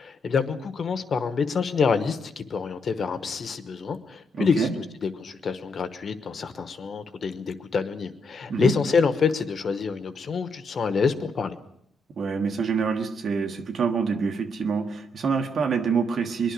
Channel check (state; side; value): normal; both; correlation 0.77